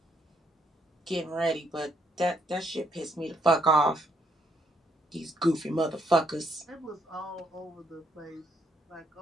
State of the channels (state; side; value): normal; both; correlation 0.72